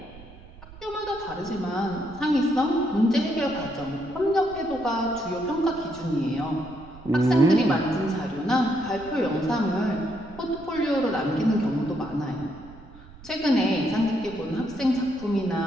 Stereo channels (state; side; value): noise; right; rumble, 19 dB below the sound